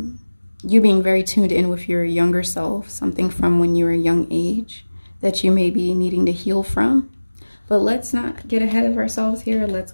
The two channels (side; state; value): both; inverted; correlation -1.00